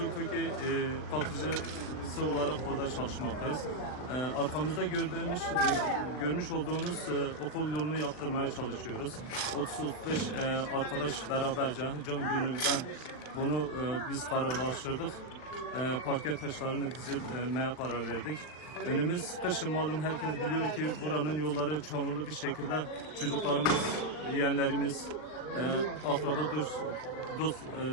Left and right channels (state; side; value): late; right; 39 ms